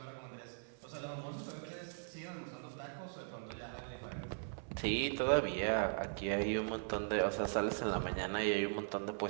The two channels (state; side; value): silent; left; 51 dB below the other